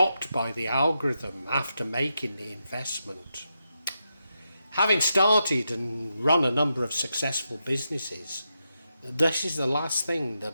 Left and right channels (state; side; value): inverted; both; correlation -0.86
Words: by the algorithm after making the investment. Having started and run a number of successful businesses, this is the last thing